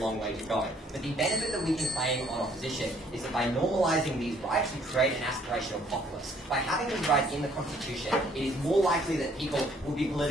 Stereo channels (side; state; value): both; normal; correlation 0.63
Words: way to go, but the benefit that we can claim on opposition is that by normalising these rights, we create an aspirational populace. By having these rights in the Constitution, it is more likely that people will be